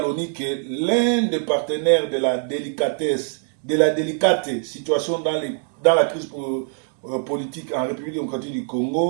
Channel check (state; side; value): silent; left; 55 dB below the other